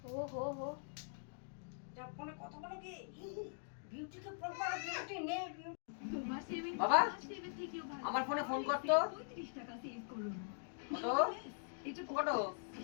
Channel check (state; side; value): silent; right; digital silence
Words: ও হো হো, ফোনে কথা বলো কি? বিউটিকে ফোন করো, বিউটি নেই। বাবা, আমার ফোনে ফোন করতো। কত